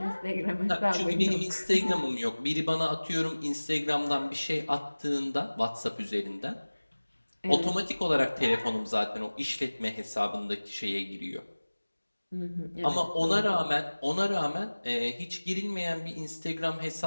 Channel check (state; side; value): inverted; both; correlation -1.00